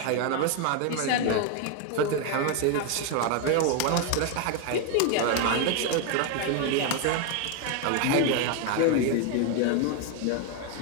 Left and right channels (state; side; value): different; both; correlation 0.01